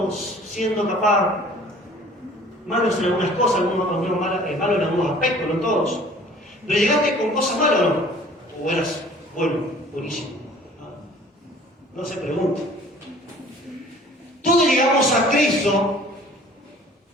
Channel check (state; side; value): normal; both; correlation 0.51